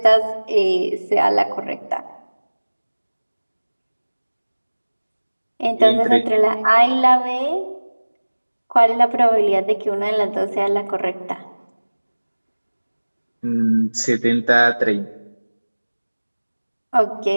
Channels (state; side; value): inverted; both; correlation -1.00